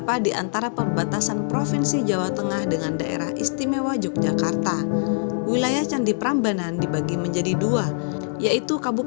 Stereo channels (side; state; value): right; silent; digital silence